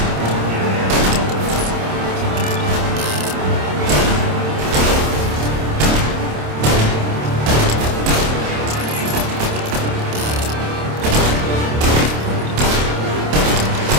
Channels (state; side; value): late; left; 27 ms